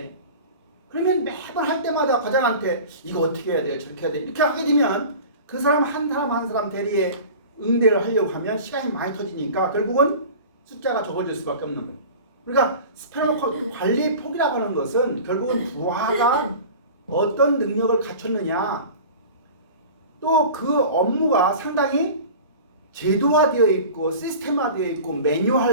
그러면 매번 할 때마다 과장한테 이거 어떻게 해야 돼? 저렇게 해야 돼? 이렇게 하게 되면 그 사람 한 사람 대리에 응대를 하려고 하면 시간이 많이 터지니까 결국은 숫자가 적어질 수밖에 없는 거예요. 그러니까 스페셜 관리 폭이라고 하는 것은 결국은 부하가 어떤 능력을 갖췄느냐, 또 그 업무가 상당히 제도화되어 있고 시스템화되어 있고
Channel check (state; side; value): inverted; both; correlation -0.38